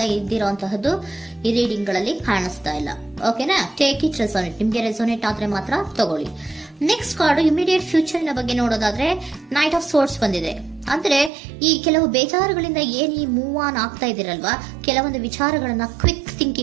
ಇದ್ದಿರುವಂತಹದ್ದು ಈ ರೀಡಿಂಗ್ ಗಳಲ್ಲಿ ಕಾಣಿಸ್ತಾ ಇಲ್ಲ. ಓಕೆನಾ? ಟೇಕ್ ಇಟ್ ರೆಸೋನೇಟ್, ನಿಮ್ಗೆ ರೆಸೋನೇಟ್ ಆದ್ರೆ ಮಾತ್ರ ತಗೊಳ್ಳಿ. ನೆಕ್ಸ್ಟ್ ಕಾರ್ಡ್ ಇಮಿಡಿಯೇಟ್ ಫ್ಯೂಚರ್ ನ ಬಗ್ಗೆ ನೋಡೋದಾದ್ರೆ ನೈಟ್ ಆಫ್ ಸೋರ್ಟ್ಸ್ ಬಂದಿದೆ. ಅಂದ್ರೆ ಈ ಕೆಲವು ಬೇಜಾರುಗಳಿಂದ ಏನ್ ಈ ಮೂವ್ ಆನ್ ಆಗ್ತಾ ಇದ್ದೀರಲ್ವಾ, ಕೆಲವೊಂದು ವಿಚಾರಗಳನ್ನ ಕ್ವಿಕ್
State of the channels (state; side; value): drops out; left; at 11.3 s